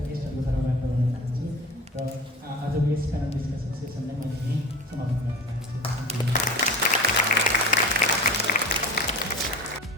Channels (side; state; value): both; normal; correlation 0.35